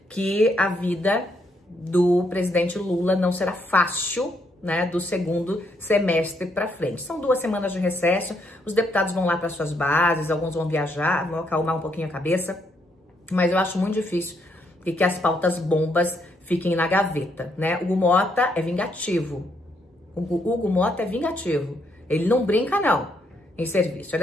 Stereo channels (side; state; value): both; normal; correlation 0.75